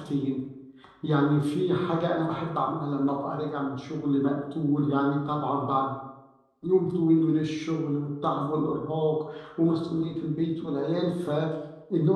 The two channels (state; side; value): identical; both; correlation 1.00